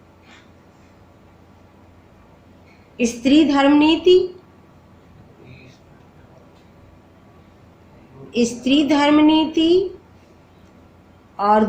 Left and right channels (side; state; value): both; identical; correlation 1.00